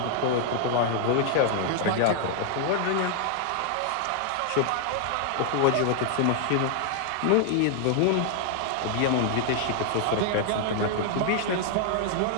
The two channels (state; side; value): different; both; correlation 0.00